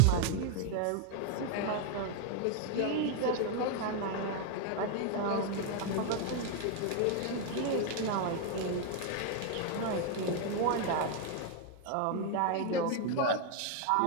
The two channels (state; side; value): different; both; correlation 0.00